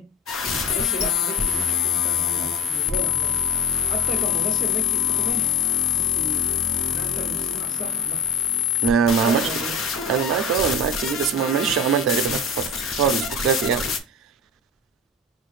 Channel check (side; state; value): both; normal; correlation 0.31